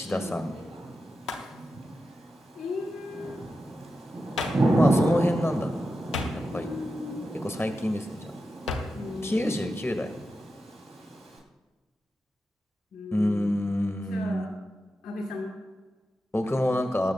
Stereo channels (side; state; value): both; normal; correlation 0.90